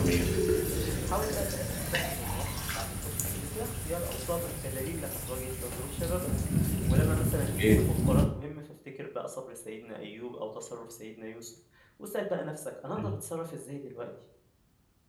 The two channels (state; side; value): identical; both; correlation 1.00